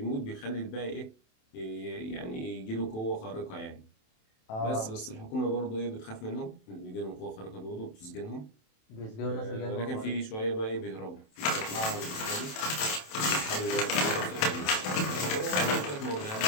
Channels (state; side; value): late; right; 27 ms